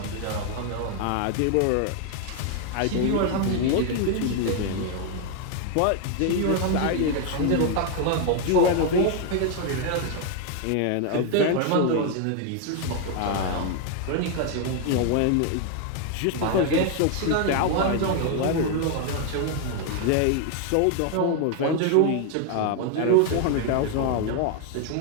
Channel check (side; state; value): both; different; correlation 0.01